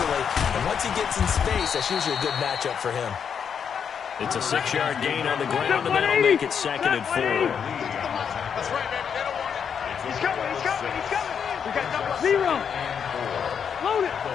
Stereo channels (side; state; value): right; quieter; 7.3 dB